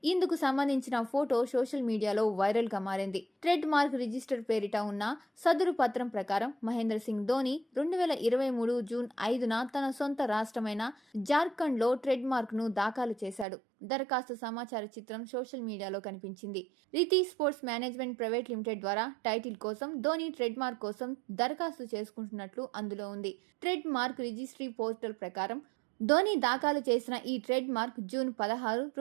ఇందుకు సంబంధించిన ఫోటో సోషల్ మీడియాలో వైరల్ గా మారింది. ట్రెడ్ మార్క్ రిజిస్టర్ పేరిట ఉన్న సదరు పత్రం ప్రకారం మహేంద్ర సింగ్ ధోని 2023 జూన్ 5న తన సొంత రాష్ట్రమైన జార్ఖండ్లో ట్రెడ్ మార్క్ ను దాఖలు చేశాడు. దరఖాస్తు సమాచార చిత్రం సోషల్ మీడియాలో కనిపించింది. Riti sports management private limited ద్వారా టైటిల్ కోసం ధోని ట్రెడ్ మార్క్ కోసం దరఖాస్తు చేసుకుంటున్నట్లు అందులో ఉంది. ట్రెడ్ మార్క్ రిజిస్ట్రీ పోర్టల్ ప్రకారం ధోని దాఖలు చేసిన ఈ ట్రేడ్ మార్క్ జూన్ 16,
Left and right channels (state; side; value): drops out; left; at 13.5 s